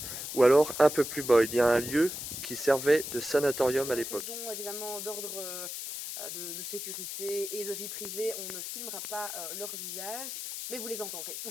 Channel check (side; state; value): left; noise; hiss, 6 dB below the sound